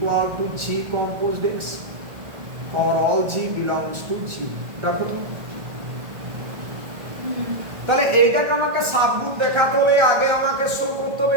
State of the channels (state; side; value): late; left; 1.7 ms